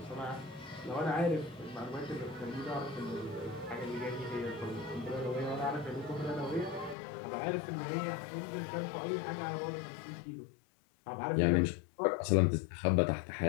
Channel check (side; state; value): right; drops out; at 7.0 s